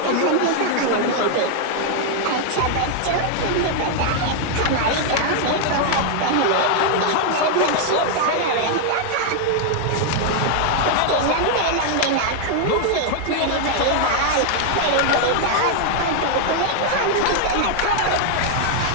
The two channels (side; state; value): both; different; correlation 0.00